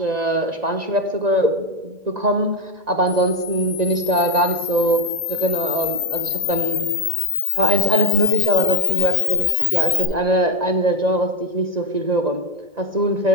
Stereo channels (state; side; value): late; left; 1.9 ms